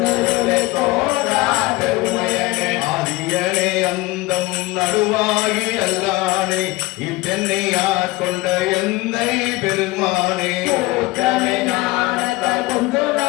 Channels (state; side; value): quieter; right; 21.1 dB